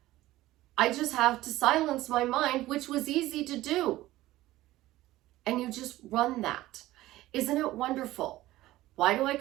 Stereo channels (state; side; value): quieter; left; 16.5 dB